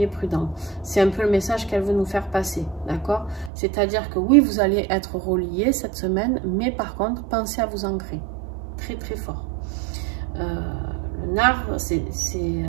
prudents. C'est un peu le message qu'elle veut nous faire passer, d'accord? C'est-à-dire que oui, vous allez être reliés cette semaine, mais par contre, pensez à vous ancrer. Très, très fort. Le nard,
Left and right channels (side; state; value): left; drops out; at 3.5 s